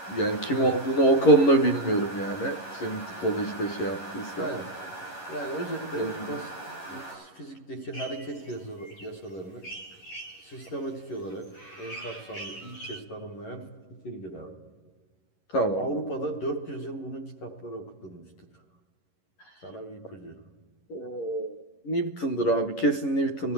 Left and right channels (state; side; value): late; right; 11 ms